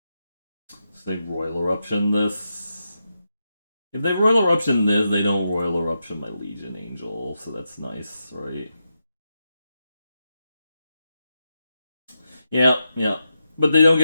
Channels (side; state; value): both; inverted; correlation -0.87